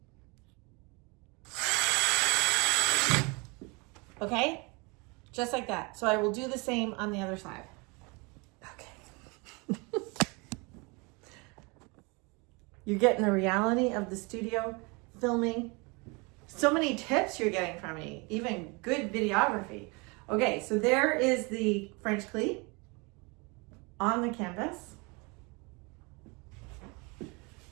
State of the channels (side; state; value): left; quieter; 28.7 dB